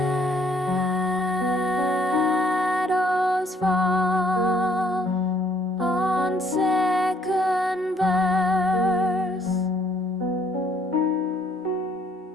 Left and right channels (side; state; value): both; normal; correlation 0.65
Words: fall on second verse,